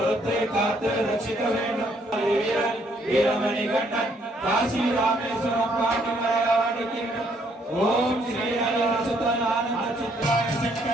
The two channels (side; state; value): both; normal; correlation 0.68